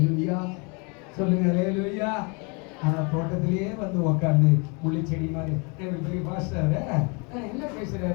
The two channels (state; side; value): quieter; right; 32.2 dB